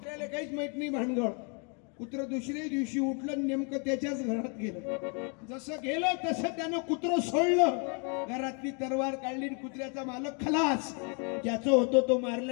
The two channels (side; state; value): right; quieter; 37.5 dB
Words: काहीच माहित नाही भानगड. कुत्र दुसऱ्या दिवशी उठलं आणि नेमकं त्याच्याच घरात गेलं. जसं गेलं तसं त्यानं कुत्र सोडलं, घरातली तरवार काढली, कुत्र्याचा मालक खलास. ज्याचं होतं तो